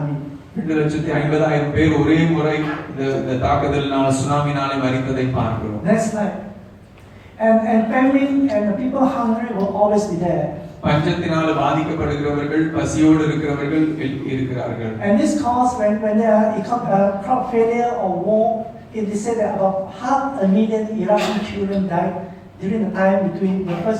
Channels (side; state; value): both; identical; correlation 1.00